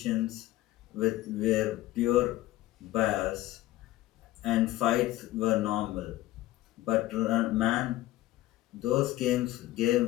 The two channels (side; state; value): right; quieter; 16.2 dB